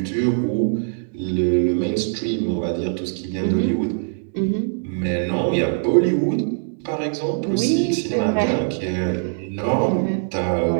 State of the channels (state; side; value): silent; left; digital silence